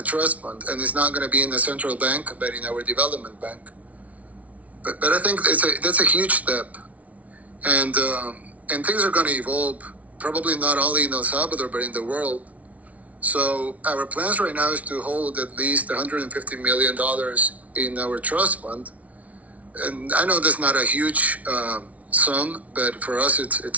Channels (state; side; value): late; left; 0.068 ms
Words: trust fund, and it's not going to be in the central bank, but in our development bank. But I think that's a huge step, and things are going to evolve. Probably not only in El Salvador, but in the world. So our plans right now is to hold at least $150 million in our trust fund. And I know that's not a huge sum, but for us